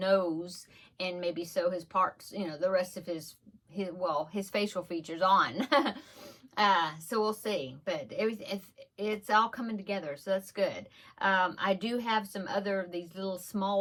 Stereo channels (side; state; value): both; identical; correlation 1.00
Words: and maybe sew his parts, the rest of his facial features on. So we'll see, but it's all coming together, so that's good. I do have some other these little